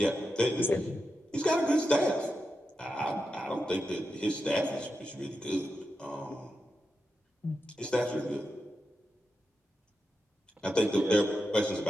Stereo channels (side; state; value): both; normal; correlation 0.88